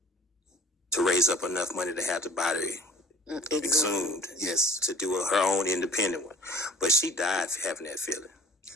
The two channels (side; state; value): both; normal; correlation 0.49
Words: to raise up enough money to have the body exhumed. Yes. To do her own independent one. But she died having that feeling.